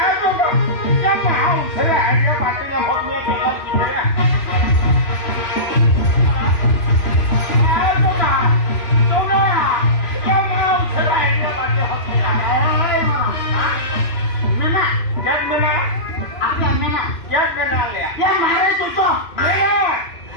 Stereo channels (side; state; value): right; late; 3.0 ms